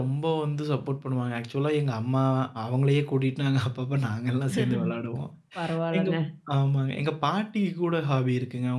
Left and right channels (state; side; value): identical; both; correlation 1.00